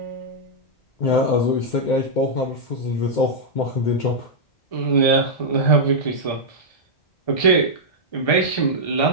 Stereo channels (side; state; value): right; late; 1.3 ms